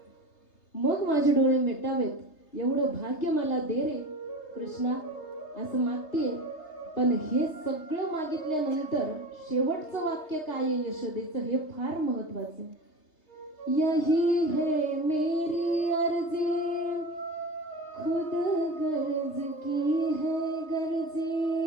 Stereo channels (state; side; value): late; right; 3.3 ms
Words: मग माझे डोळे मिटावेत एवढं भाग्य मला दे रे कृष्णा, असं मागतीये. पण हे सगळं मागितल्यानंतर शेवटचं वाक्य काय आहे यशोदेचं, हे फार महत्वाचं आहे. यही है मेरी अर्जी, खुद गर्ज की है